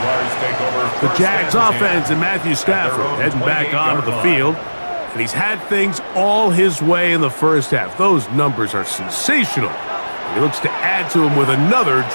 The Jags offense and Matthew Stafford heading back onto the field. And he's had things all his way in the 1st half. Those numbers are sensational. He looks to add to them with another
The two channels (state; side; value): inverted; both; correlation -1.00